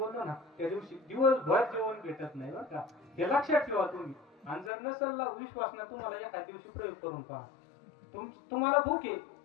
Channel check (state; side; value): drops out; right; at 4.7 s